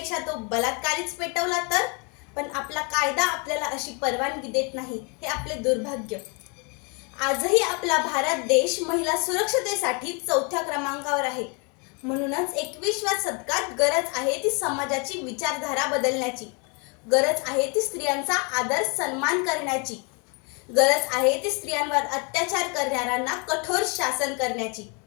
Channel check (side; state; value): right; quieter; 33.6 dB